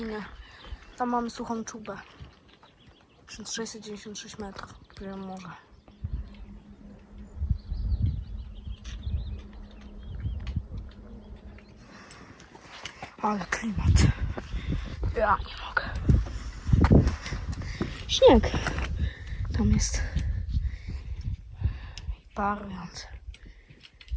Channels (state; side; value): identical; both; correlation 1.00